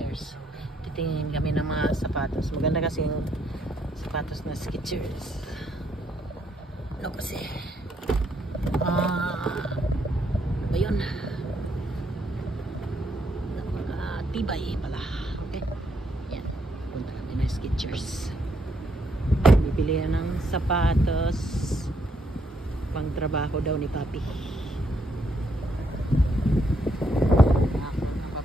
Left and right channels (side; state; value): both; normal; correlation 0.74